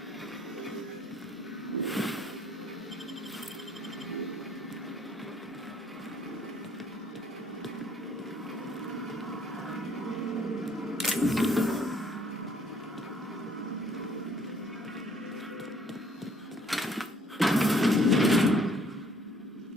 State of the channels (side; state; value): both; normal; correlation 0.62